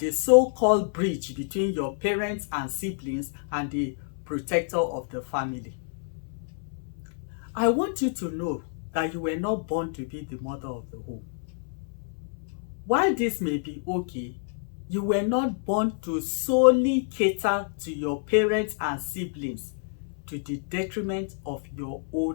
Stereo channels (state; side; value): silent; right; 59 dB below the other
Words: so-called bridge between your parents and siblings and the protector of the family. I want you to know that you were not born to be the mother of the home. While this may be okay, you were not born to solely cater to your parents and siblings to the detriment of your